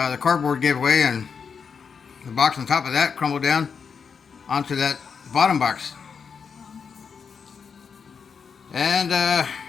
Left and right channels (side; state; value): right; quieter; 6.1 dB